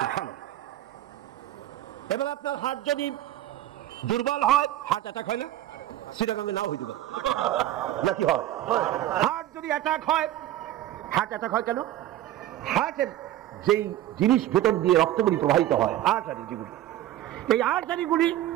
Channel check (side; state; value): left; quieter; 13.5 dB